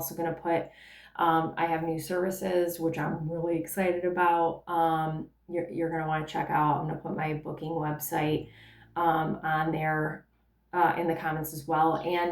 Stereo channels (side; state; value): both; identical; correlation 1.00